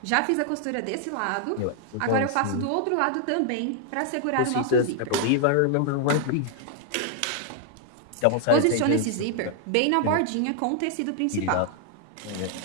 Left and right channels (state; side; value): different; both; correlation 0.00